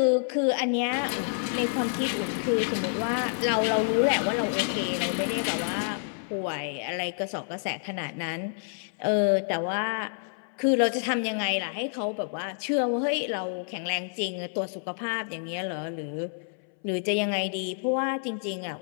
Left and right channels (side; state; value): right; silent; 59 dB below the other